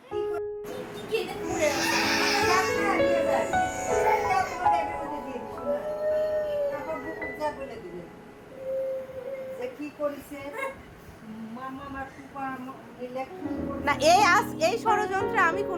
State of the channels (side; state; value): both; identical; correlation 1.00